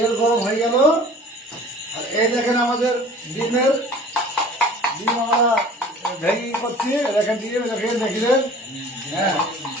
গরম হয়ে গেল। আর এই দেখেন আমাদের ডিম আমরা ভেঙে করছি। দেখেন দেখলেন, হ্যাঁ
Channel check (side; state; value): both; normal; correlation 0.46